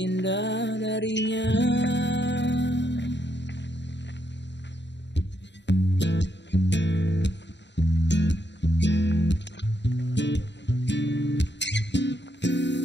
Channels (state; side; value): late; right; 0.52 ms